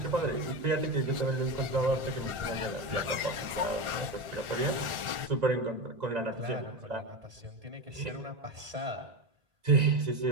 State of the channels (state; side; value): late; left; 1.4 ms